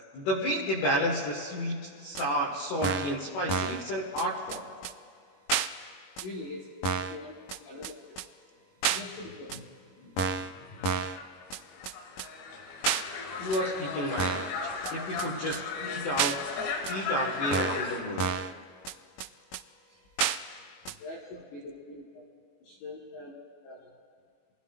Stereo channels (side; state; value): right; late; 21 ms